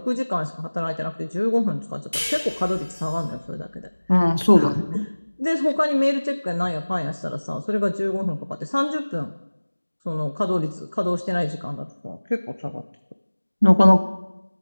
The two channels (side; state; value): both; inverted; correlation -1.00